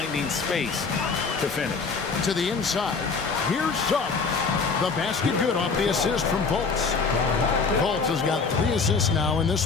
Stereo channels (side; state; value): right; quieter; 4.8 dB